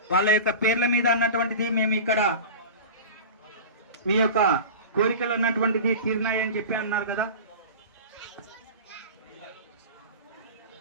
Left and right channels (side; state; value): both; inverted; correlation -0.32